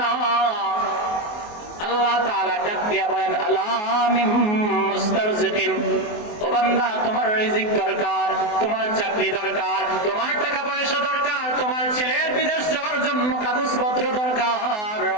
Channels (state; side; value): late; right; 24 ms